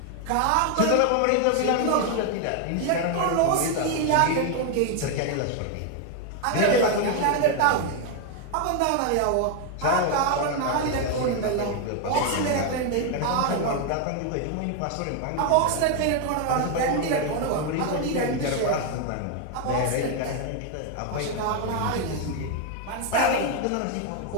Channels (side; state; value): both; different; correlation 0.01